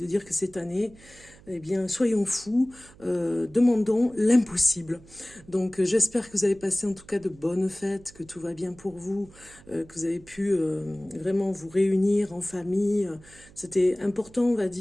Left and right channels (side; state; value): right; noise; hum, 24 dB below the sound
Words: dire que cette année, eh bien, soyons fous, demandons l'impossible. Donc, j'espère que vous avez passé en tout cas de bonnes fêtes, que tout va bien pour vous, que vous avez pu vraiment vous réunir en famille. C'était important, on va